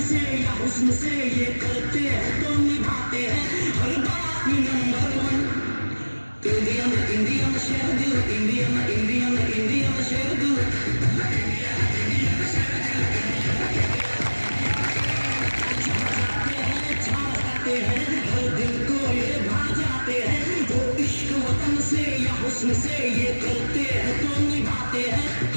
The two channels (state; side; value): inverted; both; correlation -1.00